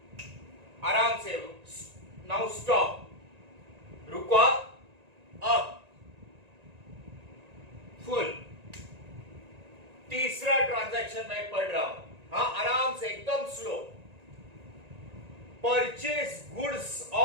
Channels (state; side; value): late; left; 1.9 ms